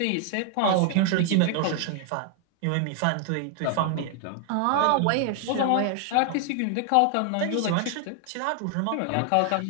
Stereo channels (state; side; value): different; both; correlation 0.00